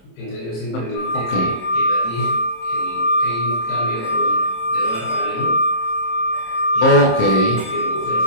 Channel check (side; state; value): right; late; 26 ms